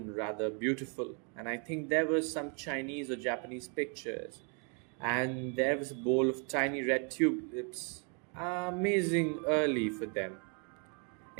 rather beautiful, and I think there were some Chinese or Japanese pictures. And there was a bowl of tiny red tulips, amazing early for them.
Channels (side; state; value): left; quieter; 38.3 dB